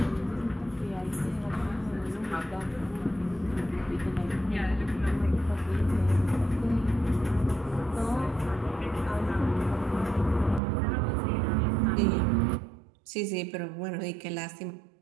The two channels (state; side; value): drops out; left; at 10.6 s